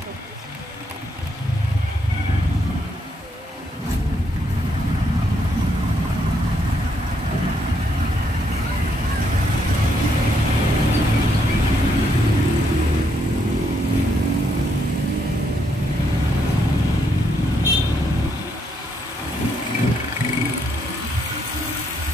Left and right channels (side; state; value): both; normal; correlation 0.75